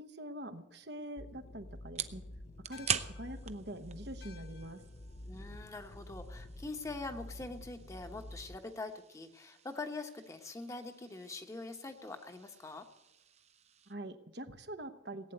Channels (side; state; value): both; normal; correlation 0.35